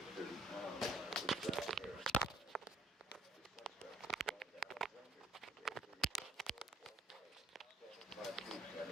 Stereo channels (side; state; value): both; normal; correlation 0.61